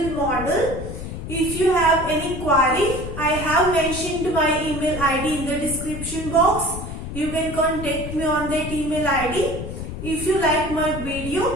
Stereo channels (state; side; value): noise; left; rumble, 8 dB below the sound